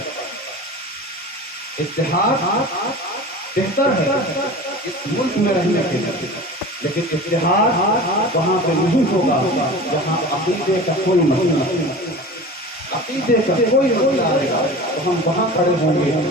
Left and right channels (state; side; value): normal; both; correlation 0.35